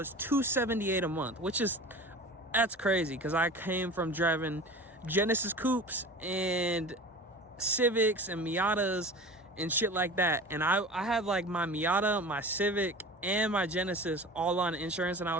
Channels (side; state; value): both; normal; correlation 0.36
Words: $278 a month, that's crazy because I came from driving Genesis Coupes and Civics and Miatas and shit like that, and I had like my Miata, my Civic, and my Genesis all on insurance, and I